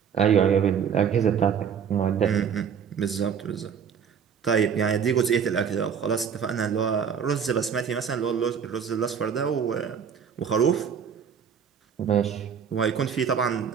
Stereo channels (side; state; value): left; quieter; 7.3 dB